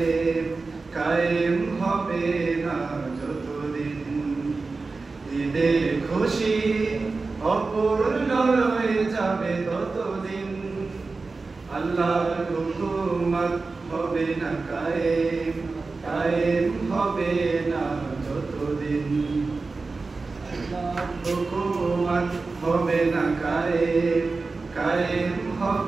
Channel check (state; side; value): quieter; left; 3.9 dB